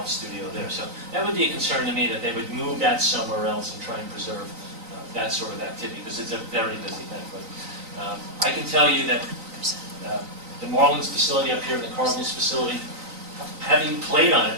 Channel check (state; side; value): late; left; 3.9 ms